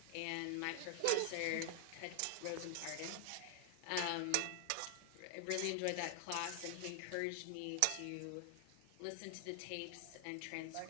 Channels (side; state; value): both; different; correlation 0.00